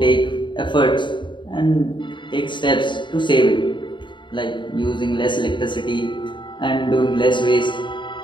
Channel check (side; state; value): right; late; 0.23 ms